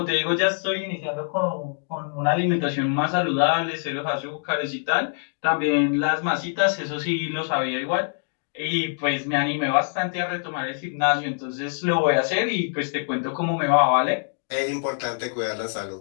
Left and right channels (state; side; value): silent; right; digital silence